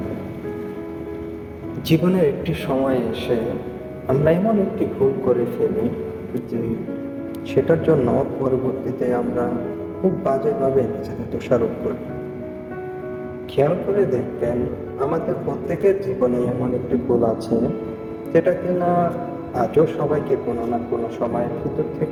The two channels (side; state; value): both; identical; correlation 1.00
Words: জীবনের একটি সময় এসে আমরা এমন একটি ভুল করে ফেলি যে সেটার জন্য পরবর্তীতে আমরা খুব বাজেভাবে নিজেদের দোষারোপ করি। খেয়াল করে দেখবেন, আমাদের প্রত্যেকের জীবনে এমন একটি ভুল আছে যেটা কিনা আজও সবাইকে কোনো না কোনো সময় ভিতর